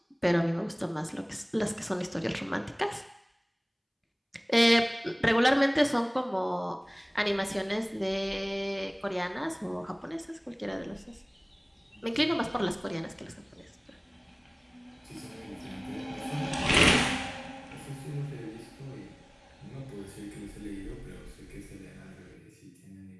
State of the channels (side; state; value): both; identical; correlation 1.00